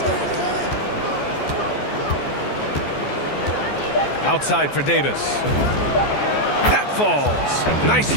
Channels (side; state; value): right; late; 14 ms